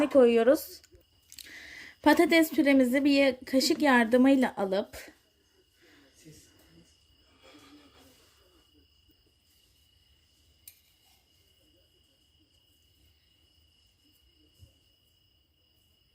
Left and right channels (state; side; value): identical; both; correlation 1.00